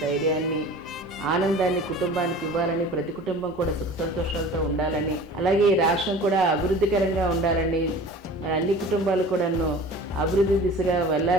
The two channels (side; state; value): both; normal; correlation 0.41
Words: ఆనందాన్ని కుటుంబానికి ఇవ్వాలని, ప్రతి కుటుంబం కూడా సుఖ సంతోషాలతో ఉండాలని, అలాగే ఈ రాష్ట్రం కూడా అభివృద్ధికరంగా ఉండాలని, మరి అన్ని కుటుంబాలు కూడాను అభివృద్ధి దిశగా